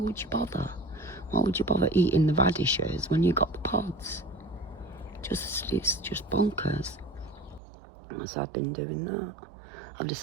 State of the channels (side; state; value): left; drops out; at 7.6 s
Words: you bother? Why would you bother eating the radishes when you got the pods? It's just bonkers. So I've been doing that. I've